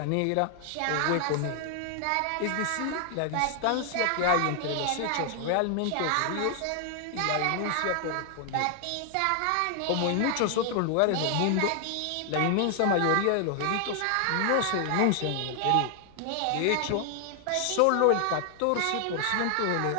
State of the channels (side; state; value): both; different; correlation 0.00